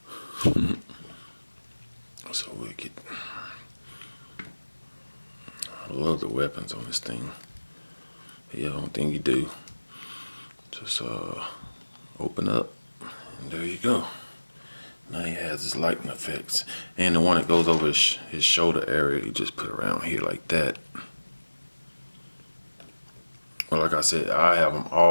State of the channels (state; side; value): inverted; both; correlation -1.00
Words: So we get. I love the weapons on this thing. Yeah, I don't think you do. Just open up, and there you go. Now he has his lightning effects, and the one that goes over his shoulder area, you just put around here like that. Well, like I said, I have them